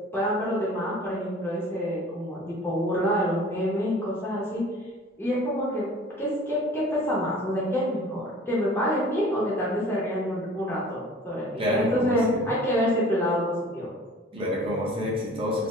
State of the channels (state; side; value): normal; both; correlation 0.46